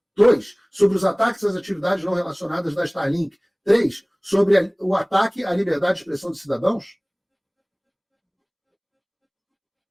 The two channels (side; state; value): both; identical; correlation 1.00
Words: 2. Sobre os ataques às atividades não relacionadas da Starlink. 3. Sobre o ataque à liberdade de expressão de cidadãos?